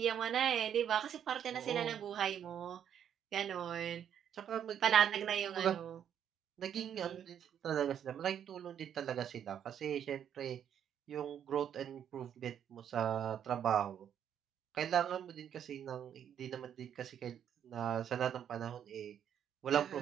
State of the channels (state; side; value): quieter; left; 9.1 dB